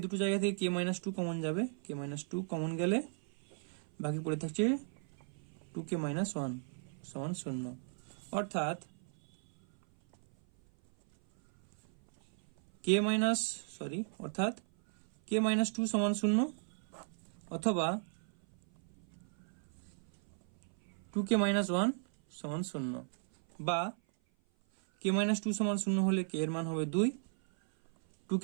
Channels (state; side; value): silent; left; 54 dB below the other